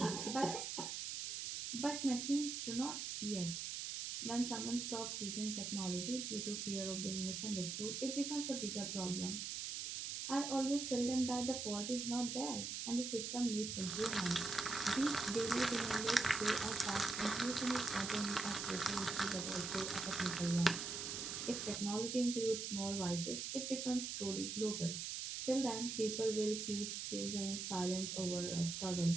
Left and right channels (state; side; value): noise; right; hiss, 4 dB below the sound